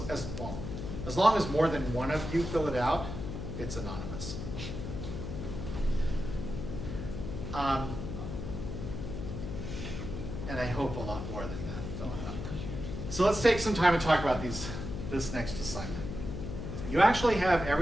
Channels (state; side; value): noise; left; hum, 6 dB below the sound